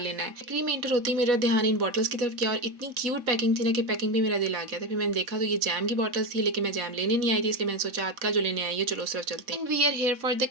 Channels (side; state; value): left; late; 3.7 ms